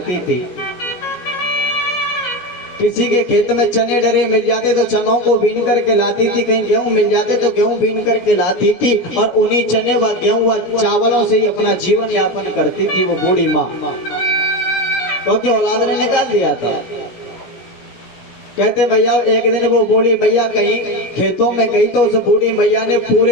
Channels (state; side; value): late; right; 16 ms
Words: थी। किसी के खेत में चने डरे मिल जाते तो चनों को बीन करके लाती थी, कहीं गेहूं मिल जाते तो गेहूं बीन करके लाती थी और उन्हीं चने व गेहूं व चावलों से ही अपना जीवन यापन करती थी वो बूढ़ी माँ, क्योंकि औलाद ने निकाल दिया था। कहते भैया एक दिन वो बूढ़ी मैया कहीं खेतों में गई तो उस बूढ़ी मैया ने